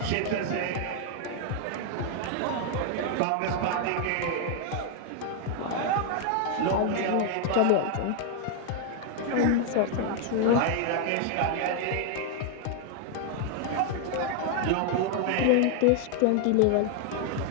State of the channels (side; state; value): both; different; correlation 0.00